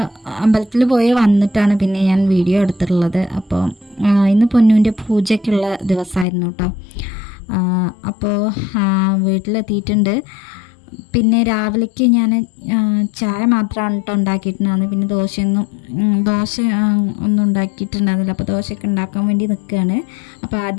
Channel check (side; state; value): right; drops out; at 6.2 s